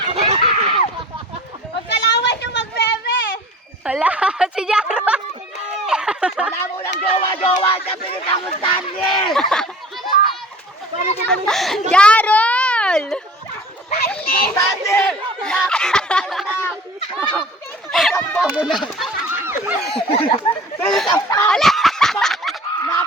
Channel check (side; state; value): both; normal; correlation 0.45